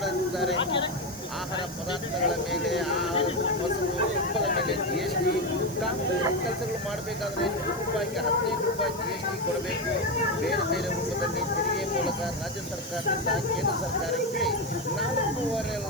ಆಹಾರ ಪದಾರ್ಥಗಳ ಮೇಲೆ, ಮೊಸರು, ತುಪ್ಪದ ಮೇಲೆ ಜಿಎಸ್ಟಿ, ಕಾಂಗ್ರೆಸ್ ಕೆಲಸಗಳು ಮಾಡಬೇಕಾದ್ರೆ ರೂಪಾಯಿಗೆ 15 ರೂಪಾಯಿ ಜಿಎಸ್ಟಿ ಕೊಡಬೇಕು. ಬೇರೆ ಬೇರೆ ರೂಪದಲ್ಲಿ ತೆರಿಗೆ ಮೂಲಕ ರಾಜ್ಯ ಸರ್ಕಾರದಿಂದ ಕೇಂದ್ರ ಸರ್ಕಾರಕ್ಕೆ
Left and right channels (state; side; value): noise; right; hiss, 16 dB below the sound